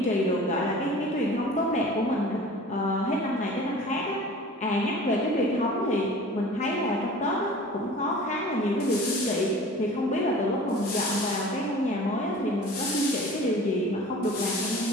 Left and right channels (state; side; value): normal; both; correlation 0.42